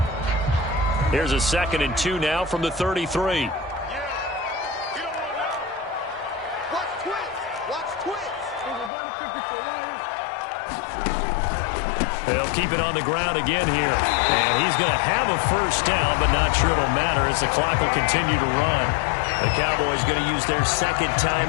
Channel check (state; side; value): drops out; right; at 8.9 s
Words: Here's a 2nd and 2 now from the 33. They'll keep it on the ground again here. And he's going to have a first down, but not sure it'll matter as the clock will continue to run. The Cowboys going to use their 2nd